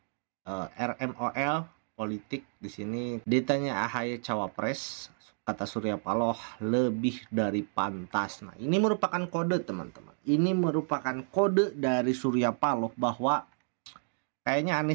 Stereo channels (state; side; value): silent; left; digital silence